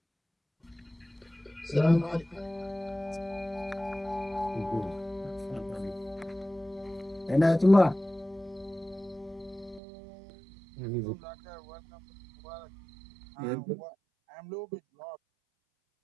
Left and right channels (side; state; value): left; drops out; at 9.8 s